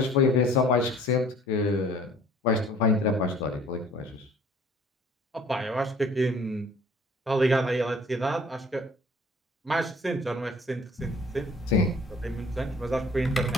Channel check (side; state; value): both; normal; correlation 0.53